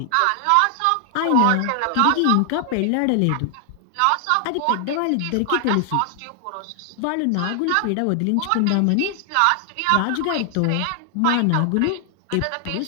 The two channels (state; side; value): different; both; correlation 0.00